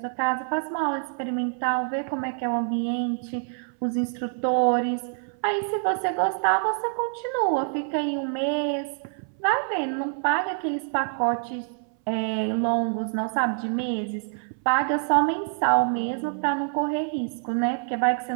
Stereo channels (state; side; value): silent; left; 61 dB below the other